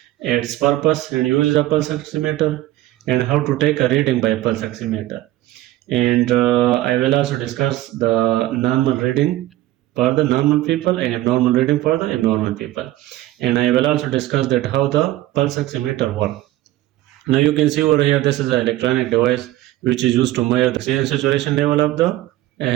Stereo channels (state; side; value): quieter; left; 15.8 dB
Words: its purpose and use of pulse oximeter, and how to take a reading by pulse oximeter. And I will also discuss the normal reading for the normal people and abnormal reading for the abnormal people. And I will also discuss that how the pulse oximeter works. Now you can see over here, this is an electronic device which is used to measure the oxygen saturation level of the